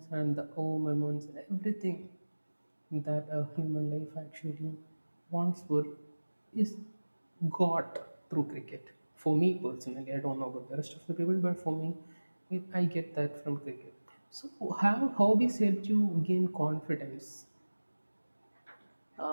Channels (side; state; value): both; inverted; correlation -1.00